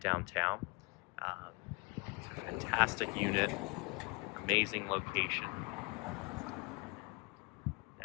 downtown. It's a fantastic unit, amazing location.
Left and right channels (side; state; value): right; quieter; 29.6 dB